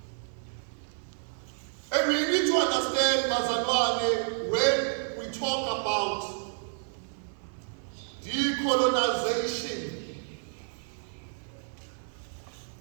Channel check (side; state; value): left; silent; 58 dB below the other